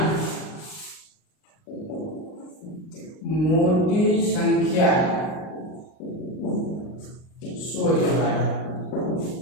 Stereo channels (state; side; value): late; right; 38 ms